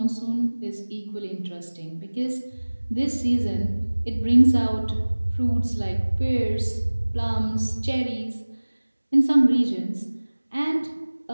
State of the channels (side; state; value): both; inverted; correlation -1.00